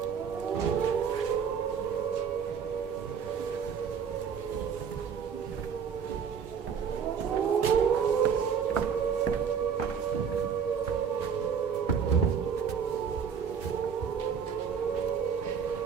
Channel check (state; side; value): quieter; left; 6.9 dB